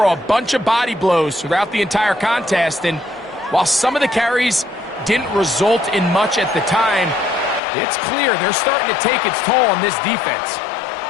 a bunch of body blows throughout the entire contest. And while some of the carries didn't result in much at the time, it's clear they're starting to take its toll on this defense.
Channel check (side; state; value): right; drops out; at 7.6 s